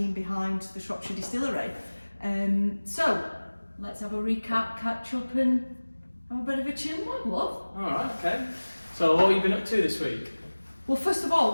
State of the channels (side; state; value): both; inverted; correlation -1.00